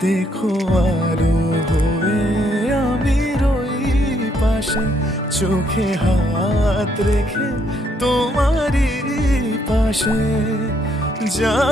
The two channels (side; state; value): both; normal; correlation 0.72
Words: দেখো আলো হয়ে আমি রই পাশে, চোখে হাত রেখে তোমারই পাশে।